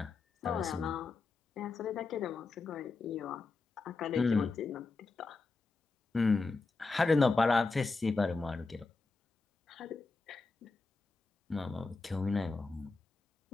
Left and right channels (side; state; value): right; quieter; 3.9 dB